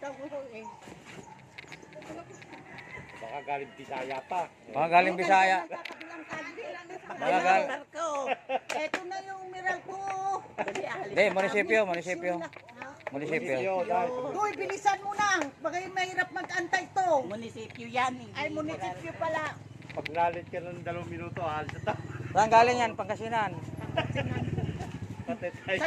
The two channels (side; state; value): both; identical; correlation 1.00